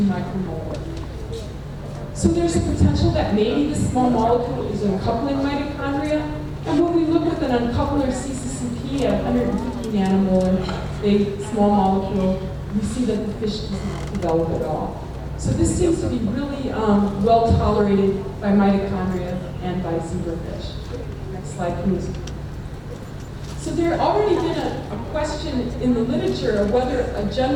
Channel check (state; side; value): identical; both; correlation 1.00